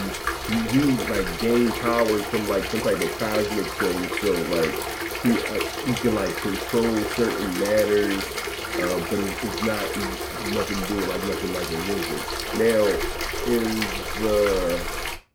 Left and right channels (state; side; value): identical; both; correlation 1.00